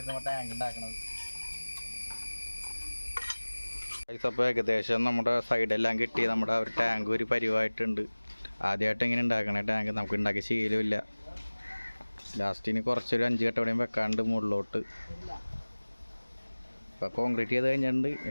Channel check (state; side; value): inverted; both; correlation -1.00